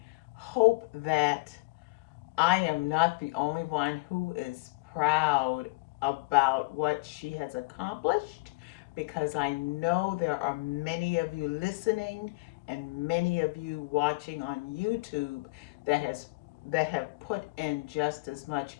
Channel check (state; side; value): quieter; right; 26.2 dB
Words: hope that I am not the only one who is proud about what she has accomplished, because I know there are many of you listening and many of you watching on YouTube that have put in just as much